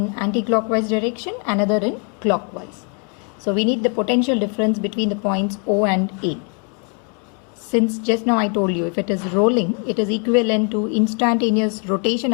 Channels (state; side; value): quieter; right; 39.5 dB